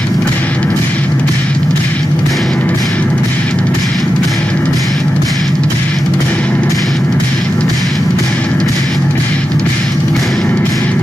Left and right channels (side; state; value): both; normal; correlation 0.90